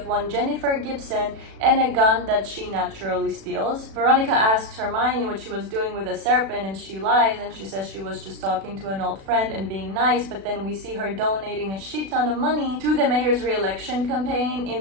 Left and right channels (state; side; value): late; left; 36 ms